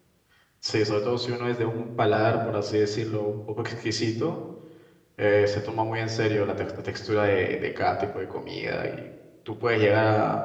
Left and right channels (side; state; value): both; identical; correlation 1.00